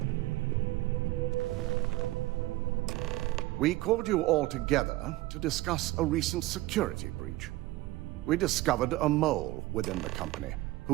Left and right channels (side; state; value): left; quieter; 18.4 dB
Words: We called you all together to discuss a recent security breach. We discovered a mole within the company